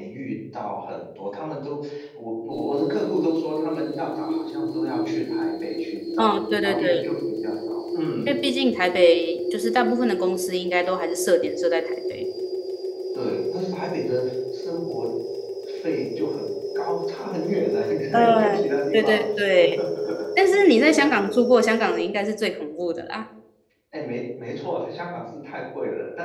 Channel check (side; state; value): both; identical; correlation 1.00